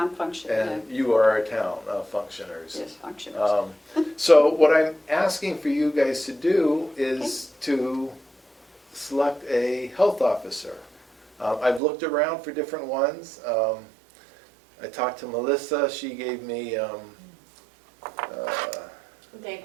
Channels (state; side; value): drops out; left; at 11.8 s